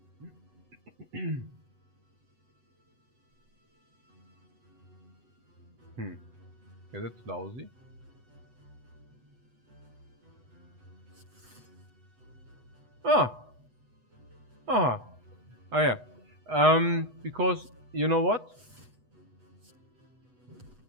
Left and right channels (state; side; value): late; left; 8.1 ms